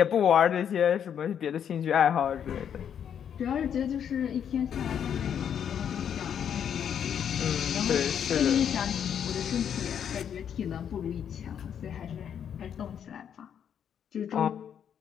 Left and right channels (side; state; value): right; quieter; 8.6 dB